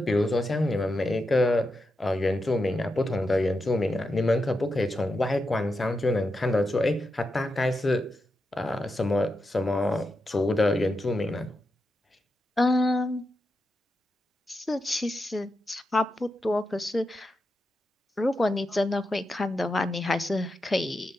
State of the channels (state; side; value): normal; both; correlation 0.87